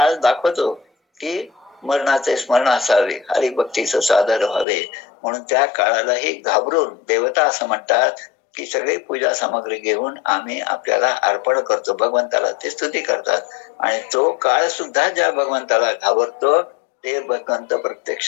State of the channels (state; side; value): drops out; right; at 4.7 s